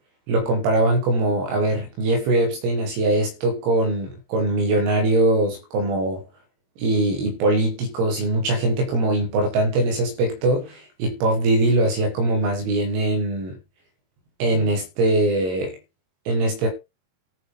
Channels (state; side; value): late; left; 22 ms